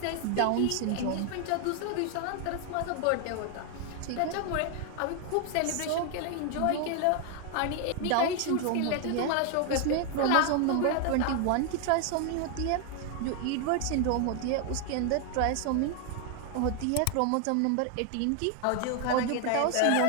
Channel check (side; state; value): both; different; correlation 0.00